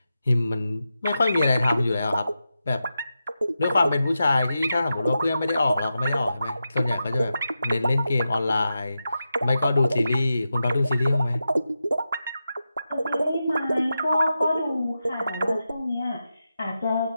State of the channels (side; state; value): both; inverted; correlation -0.90